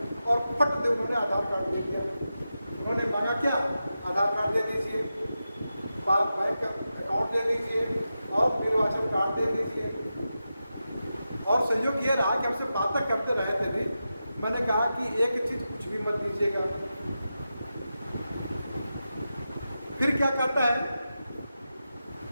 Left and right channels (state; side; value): inverted; both; correlation -0.91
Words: और फट दे उन्होंने आधार कार्ड दे दिया। उन्होंने मांगा क्या, आधार कार्ड दे दीजिए, बैंक अकाउंट दे दीजिए, और निर्वाचन कार्ड दे दीजिए। और संयोग ये रहा कि हमसे बातें करते रहे थे भी, मैंने कहा कि एक चीज़ कुछ भी मत दीजिएगा। फिर क्या करता है